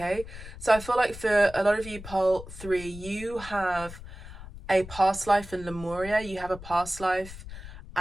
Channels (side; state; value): left; noise; rumble, 14 dB below the sound